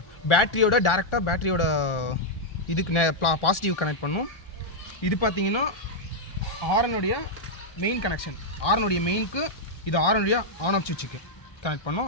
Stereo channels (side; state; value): right; late; 1.4 ms